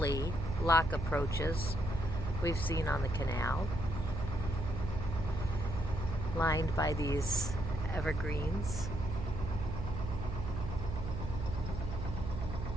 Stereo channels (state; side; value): noise; right; hum, 5 dB below the sound